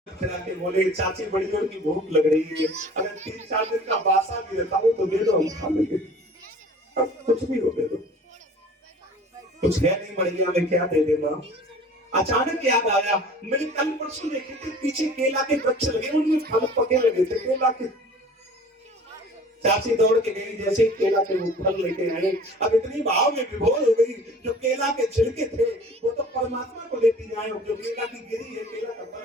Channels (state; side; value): normal; both; correlation 0.46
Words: खिला के बोले चाची बड़ी जोर की भूख लग रही है, अगर 3-4 दिन का बासा भी रहता हो तो दे दो, हम खा लेंगे। अब कुछ भी हो दे दो, कुछ है नहीं बढ़िया में क्या दे देना। अचानक याद आया, मैंने कल परसों देखे थे पीछे केला के वृक्ष लगे, उनमें फल पके लगे थे केला के। चाची दौड़ के गई, जैसे ही केला के वो फल लेके आए, अब इतनी भाव में विभोर हो गई, जो केला के छिलके थे वो तो परमात्मा को लेती जाए, जो केला की गिरी है केला का